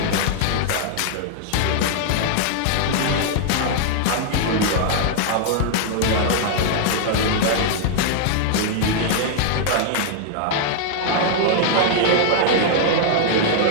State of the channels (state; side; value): different; both; correlation -0.01